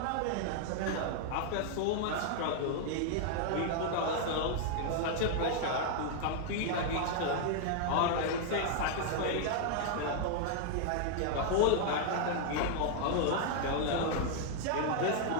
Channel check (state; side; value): different; both; correlation 0.00